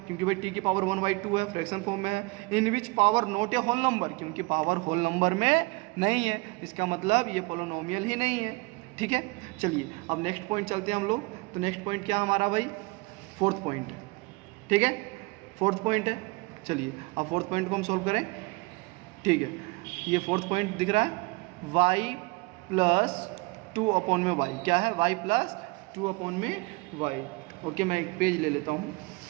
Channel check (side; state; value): left; quieter; 25.7 dB